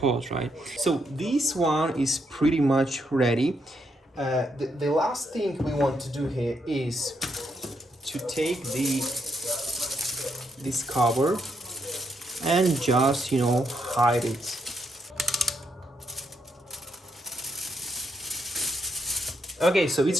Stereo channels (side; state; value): both; normal; correlation 0.78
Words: right? So this one is pretty much ready. The last thing we want to do here is to take this cover and just, you know, hide it. Okay, so